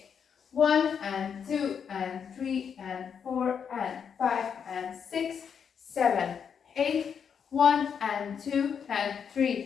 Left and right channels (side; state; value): right; quieter; 7.2 dB